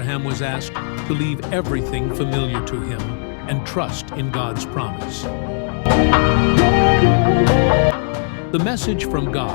was asked to leave everything familiar to him and trust in God's promise. The message from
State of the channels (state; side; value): silent; right; digital silence